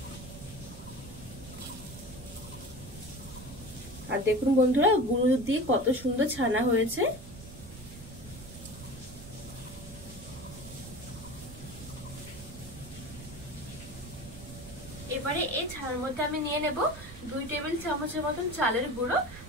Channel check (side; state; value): right; noise; rumble, 14 dB below the sound